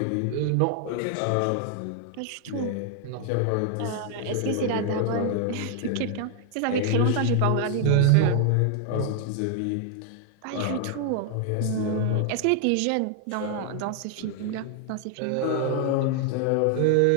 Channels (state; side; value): different; both; correlation 0.00